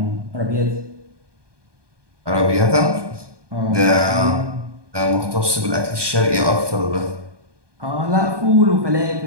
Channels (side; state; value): left; late; 1.2 ms